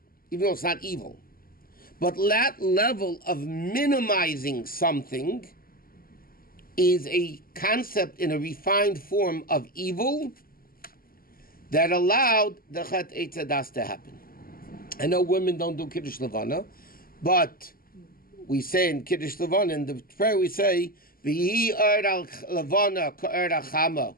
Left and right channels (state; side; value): late; right; 0.42 ms